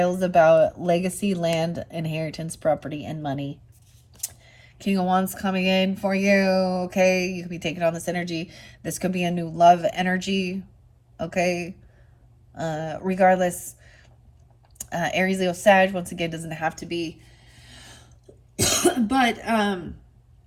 about legacy, land, inheritance, property, and money. King of Wands coming in for you. Okay, you could be taking on this energy. This could be a new love energy. Okay. Regardless, Aries, Leo, Sag, once again, doesn't have to be. But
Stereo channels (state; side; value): identical; both; correlation 1.00